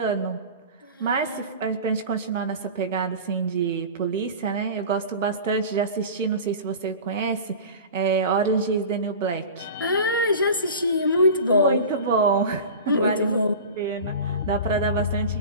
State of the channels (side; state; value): both; inverted; correlation -0.34